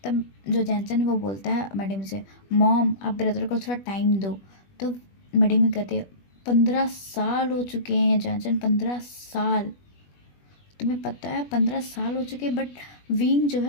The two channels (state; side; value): late; right; 21 ms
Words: तब जो जैनचन है वो बोलता है मैडम से, मॉम आप ब्रदर को थोड़ा टाइम दो। तो मैडम कहते हैं 15 साल हो चुके हैं जैनचन, 15 साल, तुम्हें पता है 15 साल हो चुके, बट विंग जो